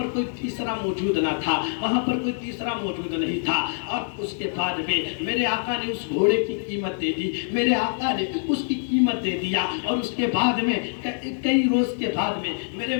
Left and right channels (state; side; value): silent; right; digital silence